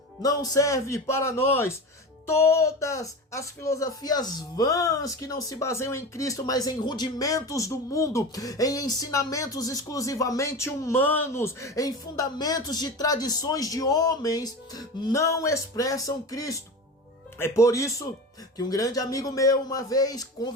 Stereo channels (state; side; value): normal; both; correlation 0.28